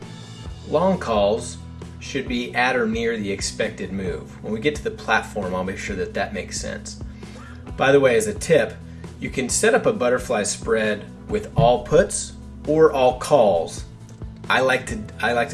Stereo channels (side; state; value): both; identical; correlation 1.00